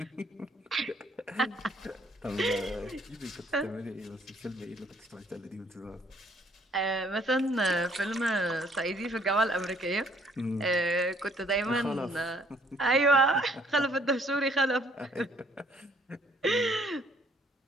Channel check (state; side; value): normal; both; correlation 0.63